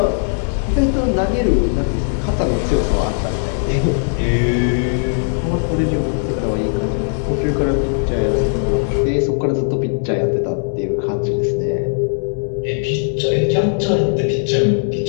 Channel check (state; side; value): silent; right; digital silence